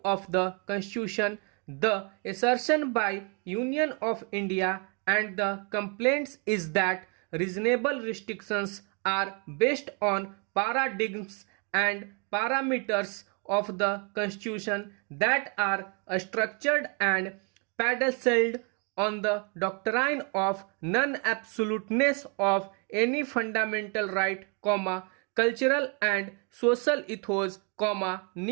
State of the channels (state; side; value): quieter; left; 35.6 dB